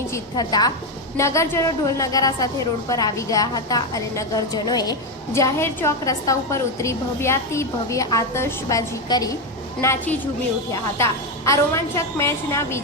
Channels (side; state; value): both; normal; correlation 0.09